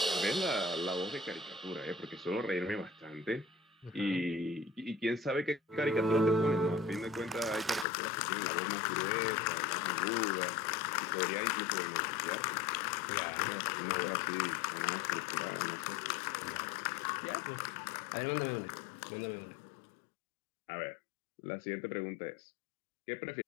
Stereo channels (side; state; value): right; drops out; at 7.9 s